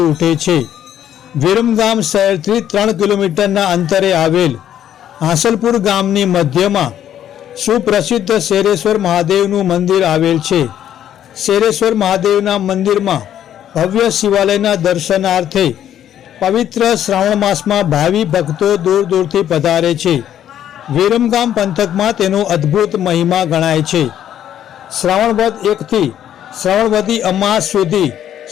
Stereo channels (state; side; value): quieter; right; 10.6 dB